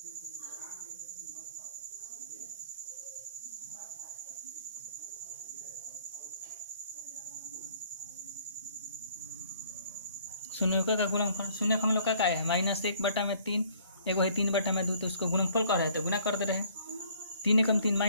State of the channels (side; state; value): both; inverted; correlation -0.58